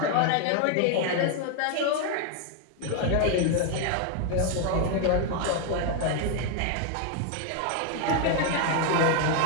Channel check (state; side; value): different; both; correlation 0.01